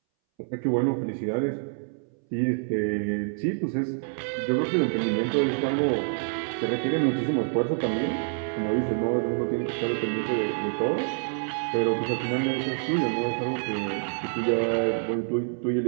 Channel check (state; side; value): silent; left; 60 dB below the other